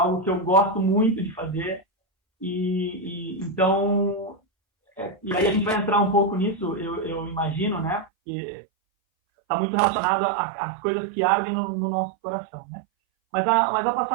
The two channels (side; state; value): left; drops out; at 8.1 s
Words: que eu gosto muito de fazer. Então, e aí a gente vai entrar um pouco nisso, eu imagino, né? Que está muito relacionado às coisas que ardem no nosso coração, né? Mas a